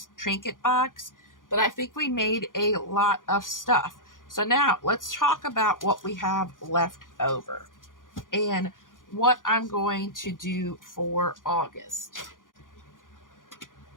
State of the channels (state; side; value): late; right; 0.89 ms